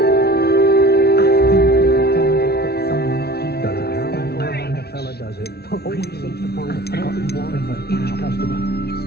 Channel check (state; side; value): late; right; 0.46 ms